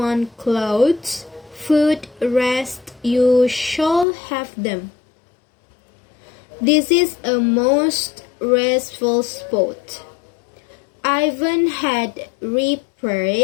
clothes, food, rest. You shall have them. This is a most restful spot. Ivan had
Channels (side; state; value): right; drops out; at 4.0 s